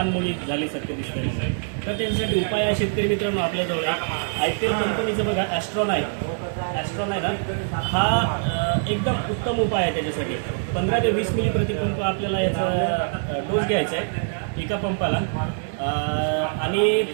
झाल्यासारखं दिसते. तर त्याच्यासाठी उपाय आहे शेतकरी मित्रांनो आपल्याजवळ IPL कंपनीचं बघा ॲस्ट्रॉन आहे ना, हा एकदम उत्तम उपाय आहे. त्याच्यासाठी 15 ते 20 मिली प्रतिपंप आपल्याला याचा डोस घ्यायचा आहे एका पंपाला आणि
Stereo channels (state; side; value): silent; left; digital silence